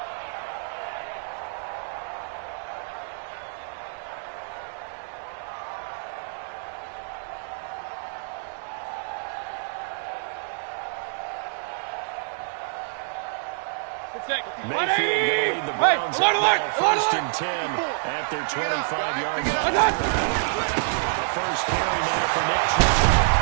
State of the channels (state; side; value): silent; left; digital silence